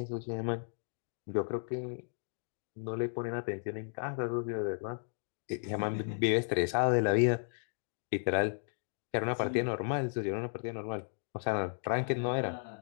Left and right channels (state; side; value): silent; right; digital silence